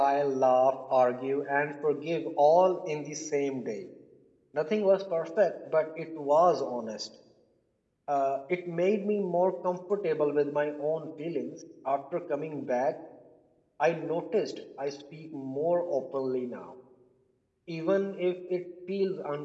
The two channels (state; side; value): identical; both; correlation 1.00